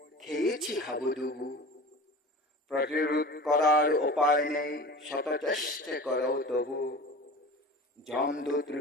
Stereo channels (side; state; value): both; normal; correlation 0.36